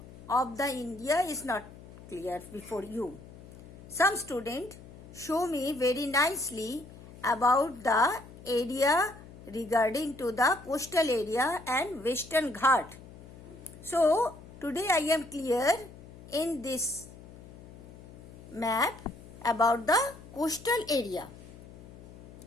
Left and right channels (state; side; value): noise; left; hum, 18 dB below the sound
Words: of the India is not clear before you. Some student show me very nicely about the area regarding to the coastal area and Western Ghat. So today I am clear in this map about the coastal area.